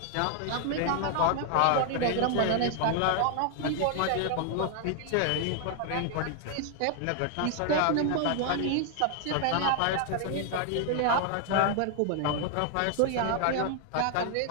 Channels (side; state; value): both; different; correlation 0.00